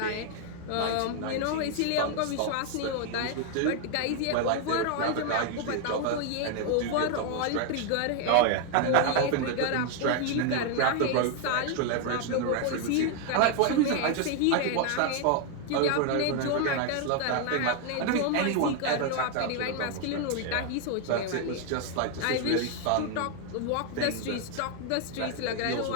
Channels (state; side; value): different; both; correlation 0.00